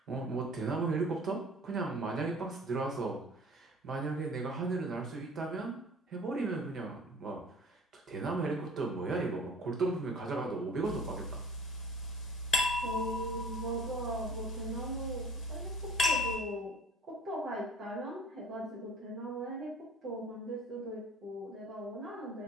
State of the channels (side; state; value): both; normal; correlation 0.47